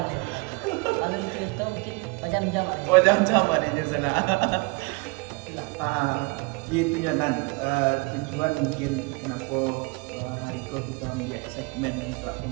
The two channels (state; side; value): quieter; left; 28.0 dB